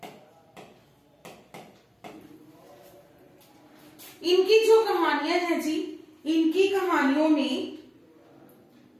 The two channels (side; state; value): both; identical; correlation 1.00